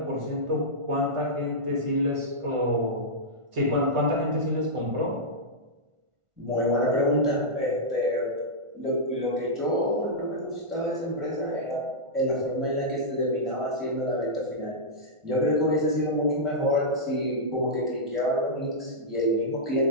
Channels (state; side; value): late; left; 1.4 ms